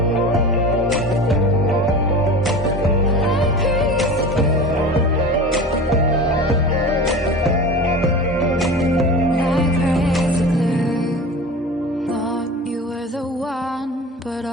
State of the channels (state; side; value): normal; both; correlation 0.34